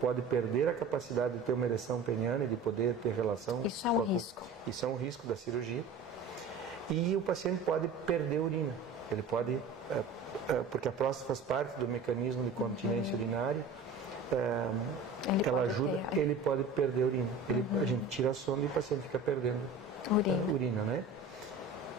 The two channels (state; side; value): quieter; left; 4.0 dB